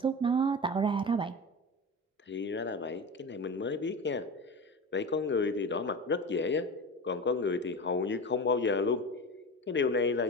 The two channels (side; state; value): both; normal; correlation 0.28